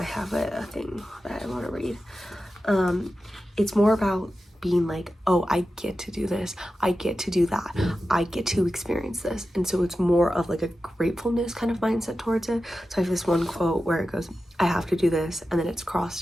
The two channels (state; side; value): normal; both; correlation 0.92